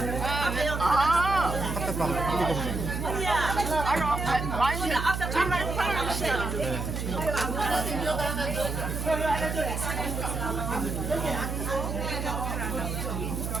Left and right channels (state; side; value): noise; right; hum, 3 dB below the sound